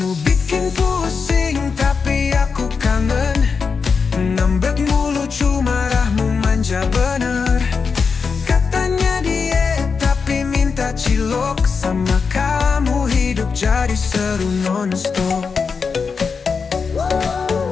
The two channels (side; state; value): right; quieter; 5.3 dB